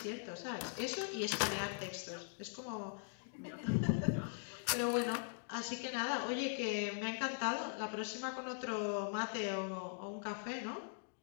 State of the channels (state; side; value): silent; right; digital silence